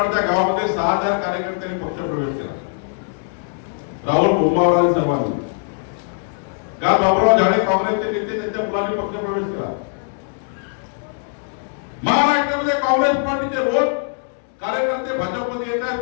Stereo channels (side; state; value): right; silent; digital silence